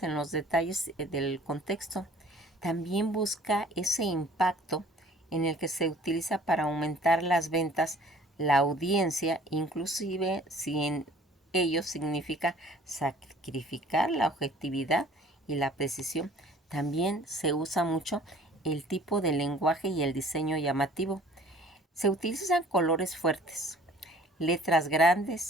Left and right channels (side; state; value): both; normal; correlation 0.52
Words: en los detalles del contexto. También busca ese impacto en el que se utiliza para aumentar las ventas, la audiencia, inclusive si en ello significa sacrificar la objetividad y la precisión. También se usa mucho el tipo de lenguaje y el diseño llamativo. Se utilizan colores fuertes, letras